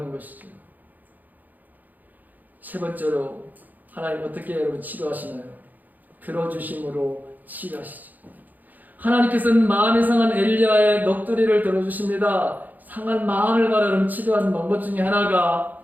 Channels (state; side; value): late; left; 0.083 ms